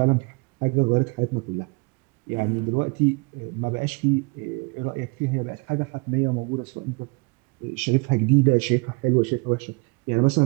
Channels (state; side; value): quieter; left; 29.6 dB